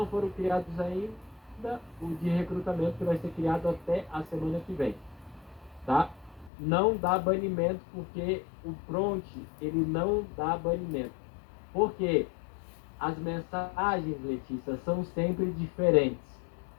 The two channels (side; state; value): right; drops out; at 6.5 s